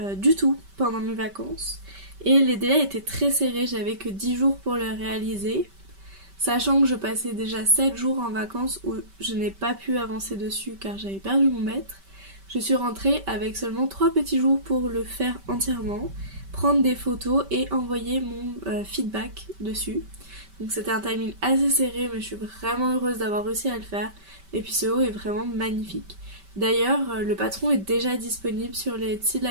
du tout pendant mes vacances. Et les délais étaient très serrés, j'avais que 10 jours pour le réaliser. Sachant que je passais déjà 7 jours en vacances où je n'ai pas pu avancer dessus car j'avais perdu mon maître. Je suis rentrée avec seulement 3 petits jours pour le faire entièrement, prendre des photos et envoyer mon feedback dessus. Donc c'était un timing assez serré, mais je suis vraiment heureuse d'avoir réussi à le faire. Et puis ce haut est vraiment magnifique. D'ailleurs, le patron est déjà disponible sur les Etsy de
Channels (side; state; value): left; late; 5.2 ms